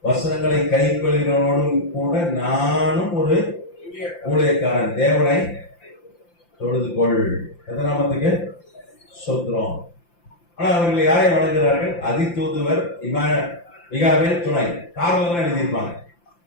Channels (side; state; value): right; late; 5.8 ms